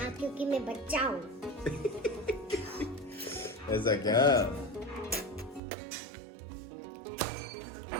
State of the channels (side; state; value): left; drops out; at 5.6 s